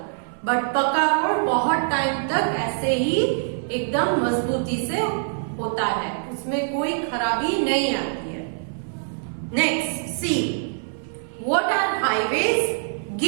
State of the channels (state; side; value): silent; left; 63 dB below the other